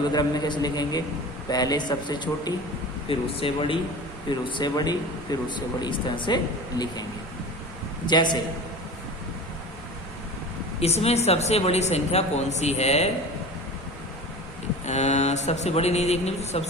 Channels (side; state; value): both; normal; correlation 0.35